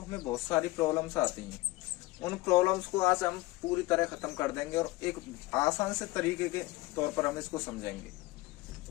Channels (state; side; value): quieter; right; 20.3 dB